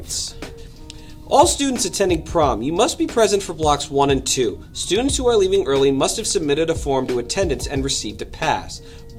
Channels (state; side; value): identical; both; correlation 1.00